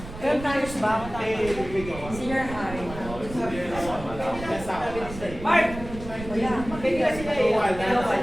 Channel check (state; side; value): noise; right; rumble, 12 dB below the sound